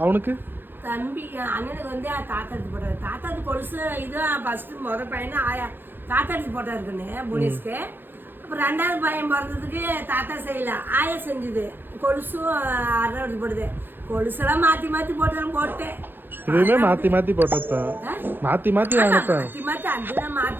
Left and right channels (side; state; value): left; late; 0.098 ms